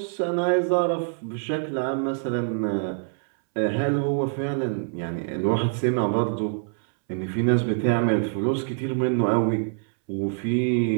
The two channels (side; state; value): left; silent; 62 dB below the other